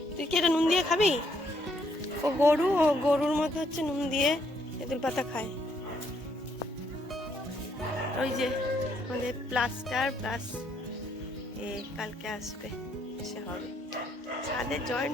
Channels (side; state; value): both; normal; correlation 0.71